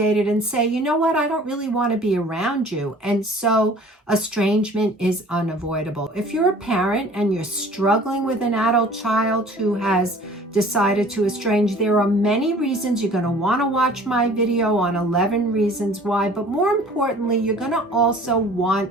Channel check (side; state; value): both; normal; correlation 0.48